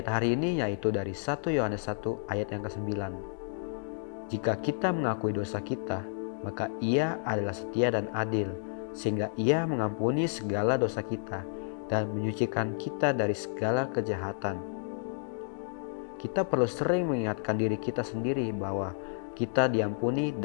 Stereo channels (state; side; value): silent; right; digital silence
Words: hari ini yaitu dari 1 Yohanes 1 ayat yang ke-9. Jika kita mengakui dosa kita, maka Ia adalah setia dan adil, sehingga Ia mengampuni segala dosa kita dan menyucikan kita dari segala kejahatan. Kita perlu sering mengingatkan diri kita sendiri bahwa kita diampuni